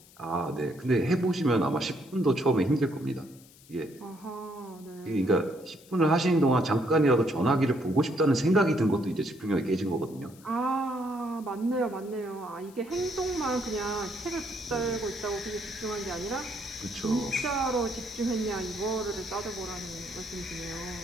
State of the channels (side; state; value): left; noise; hiss, 24 dB below the sound